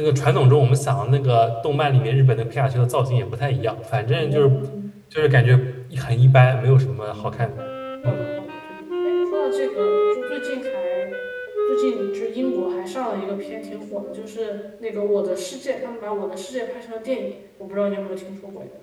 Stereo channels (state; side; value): identical; both; correlation 1.00